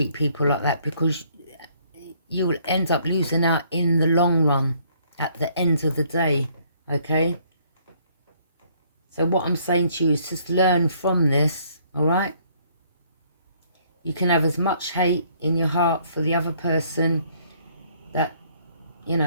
people like that, because you will end up losing out in the long run at the end of the day, okay? So what I'm saying to you is just learn from this, all right? You can have as much hate in your heart for the other person that, you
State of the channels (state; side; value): inverted; both; correlation -0.65